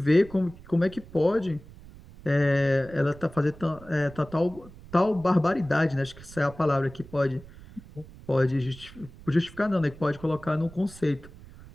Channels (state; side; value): noise; right; rumble, 19 dB below the sound